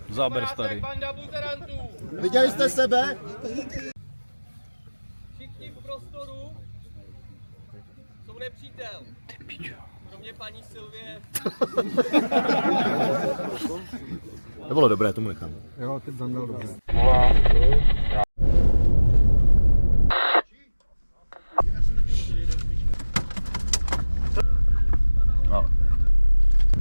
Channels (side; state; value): both; inverted; correlation -1.00